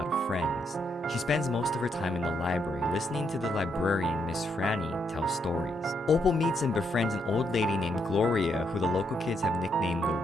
of friends. She spends most of her time in the library, listening to the librarian, Miss Franny, tell stories. Opal meets and befriends an old lady named Gloria, who the local kids have nicknamed the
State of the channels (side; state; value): both; normal; correlation 0.77